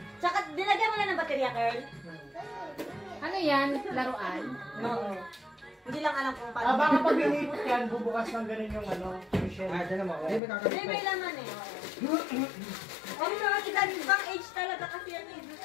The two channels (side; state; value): right; drops out; at 10.4 s